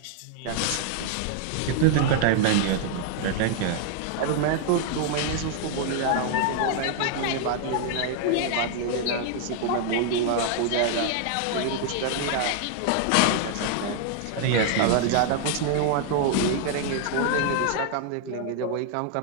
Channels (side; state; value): both; different; correlation 0.00